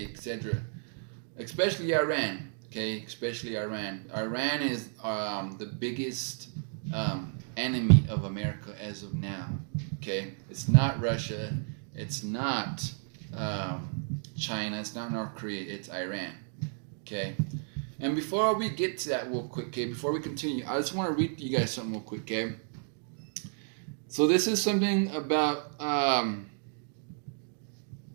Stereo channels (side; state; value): left; silent; 56 dB below the other